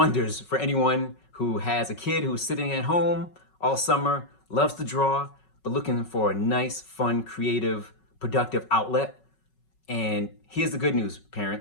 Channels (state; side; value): late; right; 5.4 ms